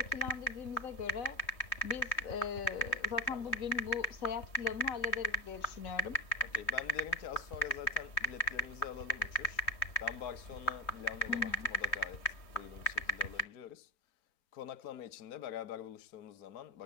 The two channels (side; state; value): right; late; 3.3 ms